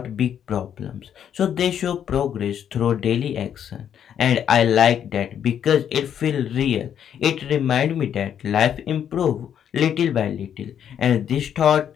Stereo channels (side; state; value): right; quieter; 9.1 dB